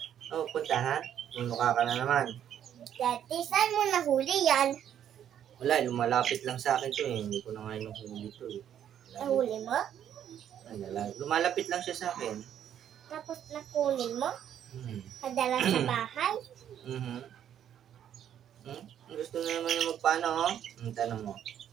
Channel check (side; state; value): left; quieter; 9.9 dB